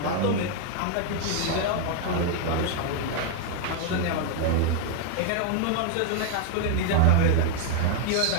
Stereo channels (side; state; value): both; different; correlation 0.00